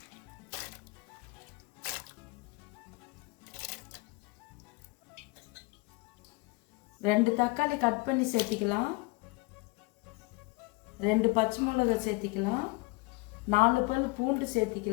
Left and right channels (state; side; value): quieter; right; 25.5 dB